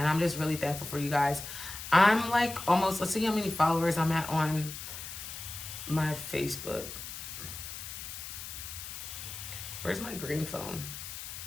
I'm just really thankful for you guys. I'm like almost, let's see how many followers I'm at on my Facebook. Where's my green phone?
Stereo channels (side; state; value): left; noise; hiss, 9 dB below the sound